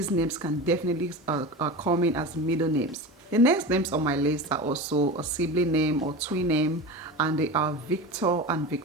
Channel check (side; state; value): both; normal; correlation 0.28